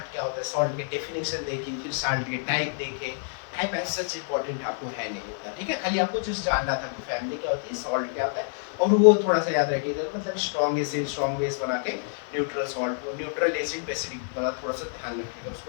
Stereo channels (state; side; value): silent; right; 60 dB below the other